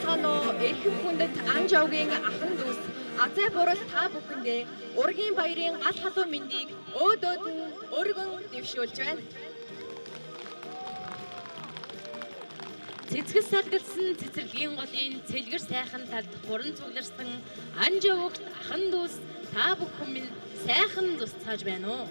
байна уу? Эрхэм хүндэт Анжавгийн ахан дүүс Азай бурал та бүхэндээ ургийн баярын гал халуун мэндийг өөдөөд нь өргөн дэвшүүлж байна. Цэцгэс салгалсан цэцэрлэгийн голын цэлгэр сайхан талд хуран цугларсан Анжавгт ахан дүүс та бүхэн минь сайхан тусцааж байна уу?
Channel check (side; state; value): both; inverted; correlation -1.00